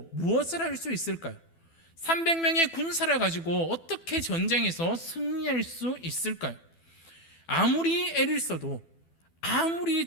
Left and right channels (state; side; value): late; right; 12 ms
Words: 무엇을 할 수 있을까요? 300명의 군사를 가지고 어떻게 전쟁에서 승리할 수 있을까요? 아무리 애를 써도, 아무리